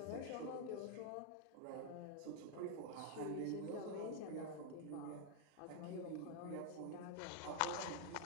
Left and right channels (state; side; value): different; both; correlation 0.00